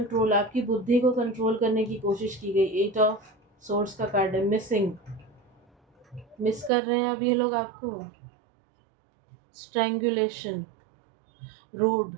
आपकी बुद्धि को कंट्रोल करने की कोशिश की गई। 8 ऑफ सोर्स का कार्ड है। मिसिंग, मिस कर रहे हैं अब ये लोग आपको। स्ट्रैंगुलेशन, रोड,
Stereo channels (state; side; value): drops out; left; at 6.7 s